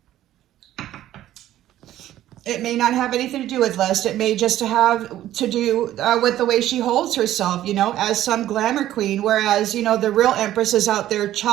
It may not have anything to do with lust. It may just have to do with the way she holds herself, you know, as some glamour queen. Whereas, you know, the real Empress is out there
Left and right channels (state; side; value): quieter; left; 13.2 dB